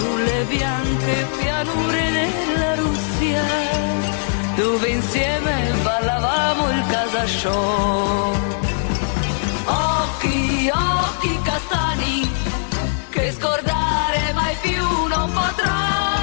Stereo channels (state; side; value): silent; right; digital silence